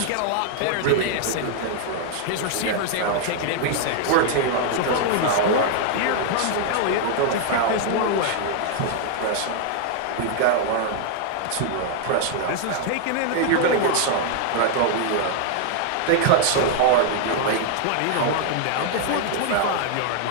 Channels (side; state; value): both; different; correlation 0.00